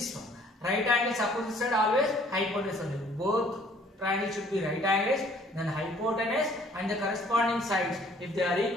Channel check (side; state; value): both; normal; correlation 0.58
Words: one. Right angles opposite side always hypotenuse only. Both triangles should be right angles, then hypotenuse and the corresponding sides, if they are